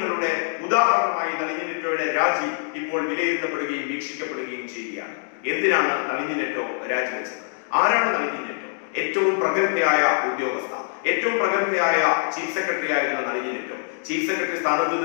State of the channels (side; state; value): right; silent; digital silence